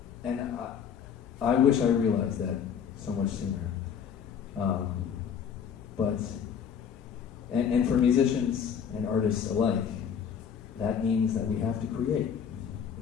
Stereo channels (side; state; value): right; quieter; 7.7 dB